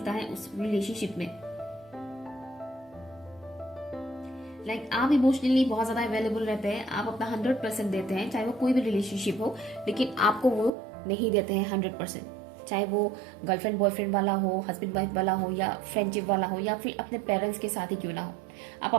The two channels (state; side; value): drops out; left; at 10.7 s